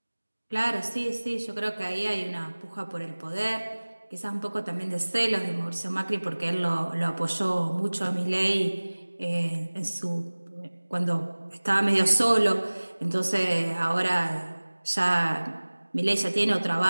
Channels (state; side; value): inverted; both; correlation -1.00